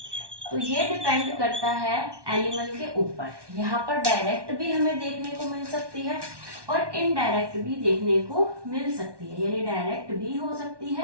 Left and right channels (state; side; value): late; left; 1.2 ms